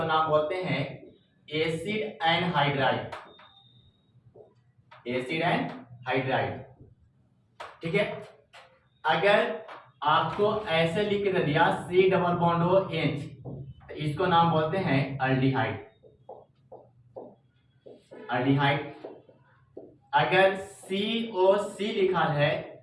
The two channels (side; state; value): both; identical; correlation 1.00